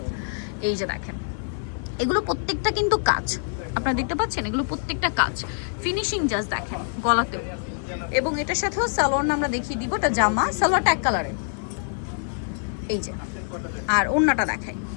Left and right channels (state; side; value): silent; right; 62 dB below the other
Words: এই যে দেখেন, এগুলো প্রত্যেকটা কিন্তু কাজ, আপনারা দেখতে পাচ্ছেন, এগুলো প্রত্যেকটা কাজ। ফিনিশিং জাস্ট দেখেন গলাতেও। এবং এটার সাথেও সালোয়ার আমরা দেখিয়ে দিব। এটা জামা, সালোয়ারটা এক কালারের, এই যে। আর ওড়নাটা দেখাই,